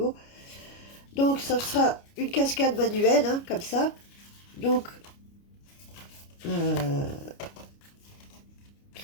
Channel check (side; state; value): right; late; 29 ms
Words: Donc, ça sera une cascade manuelle, hein, comme ça. Donc, il